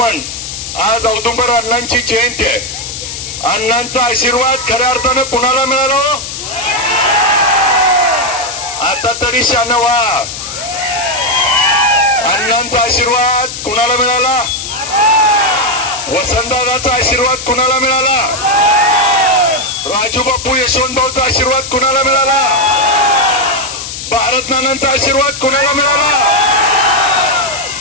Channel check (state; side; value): noise; left; hiss, 8 dB below the sound